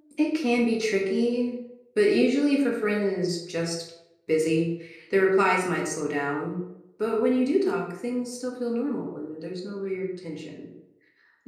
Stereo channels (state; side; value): identical; both; correlation 1.00